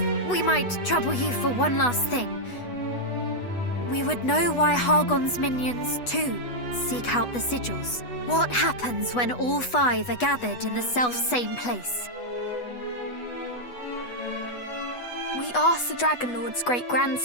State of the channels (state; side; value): late; right; 8.2 ms